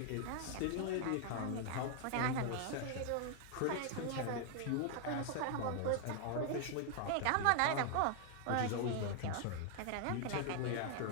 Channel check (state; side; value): different; both; correlation 0.00